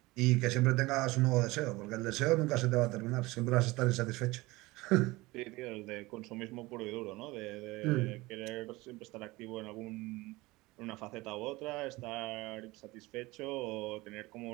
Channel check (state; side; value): quieter; left; 21.2 dB